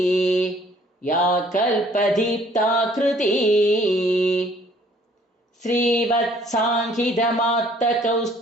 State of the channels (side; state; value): both; normal; correlation 0.59